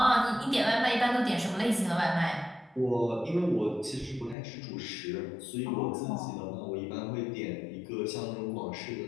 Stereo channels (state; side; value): drops out; right; at 4.4 s